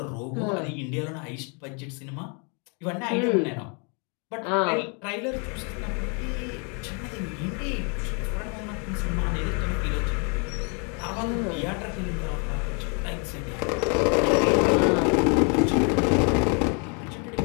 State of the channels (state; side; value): quieter; right; 36.0 dB